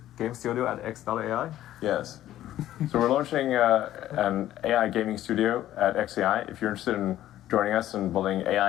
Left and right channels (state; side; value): quieter; right; 13.1 dB